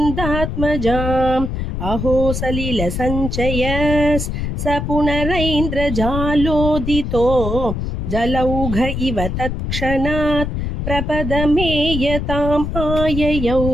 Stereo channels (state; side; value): noise; left; rumble, 3 dB below the sound